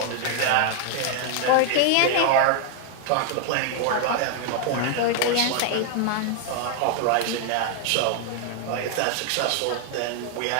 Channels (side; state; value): both; different; correlation 0.00